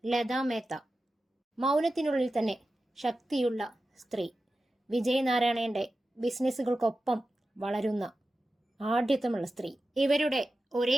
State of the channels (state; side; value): normal; both; correlation 0.93